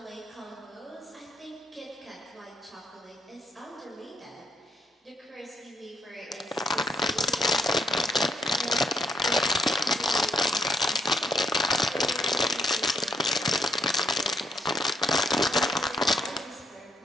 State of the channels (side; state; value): both; normal; correlation 0.73